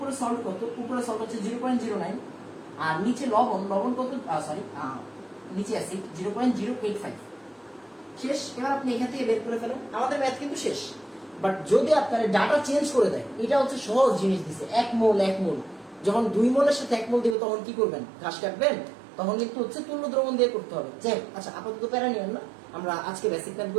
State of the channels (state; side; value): drops out; left; at 17.4 s